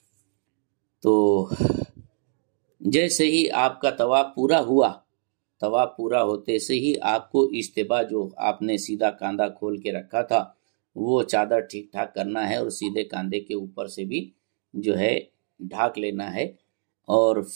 تو جیسے ہی آپ کا طواف پورا ہوا، طواف پورا ہوتے سے ہی آپ کو اجتباء، جو آپ نے سیدھا کاندھا کھول کے رکھا تھا وہ چادر ٹھیک ٹھاک کرنا ہے، اور سیدھے کاندھے کے اوپر سے بھی جو ہے ڈھاک لینا ہے، اور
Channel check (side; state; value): left; silent; digital silence